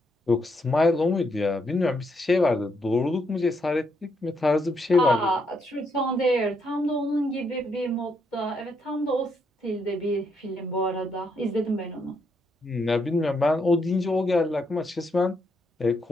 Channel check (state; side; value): normal; both; correlation 0.76